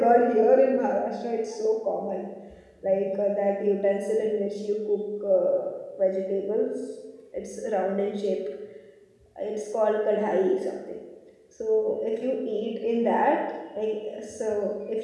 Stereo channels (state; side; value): identical; both; correlation 1.00